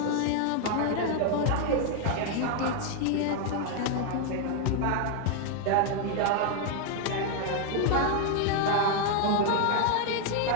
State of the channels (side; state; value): both; different; correlation 0.00